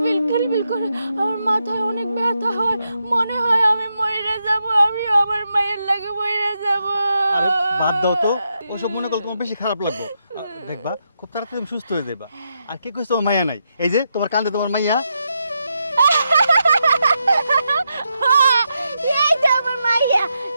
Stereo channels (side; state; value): both; inverted; correlation -0.84